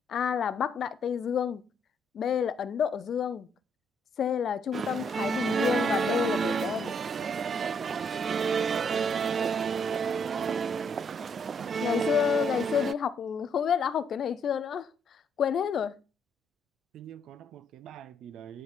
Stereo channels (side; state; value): both; normal; correlation 0.71